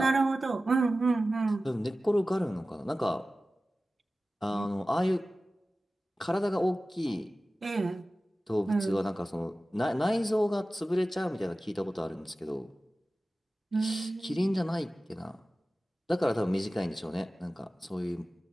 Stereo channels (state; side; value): normal; both; correlation 0.96